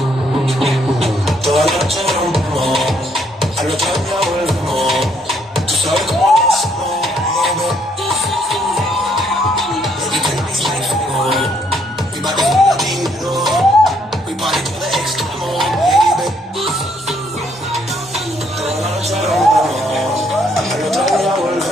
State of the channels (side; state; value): both; normal; correlation 0.69